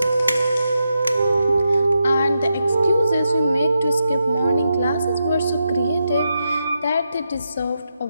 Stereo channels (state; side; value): inverted; both; correlation -0.86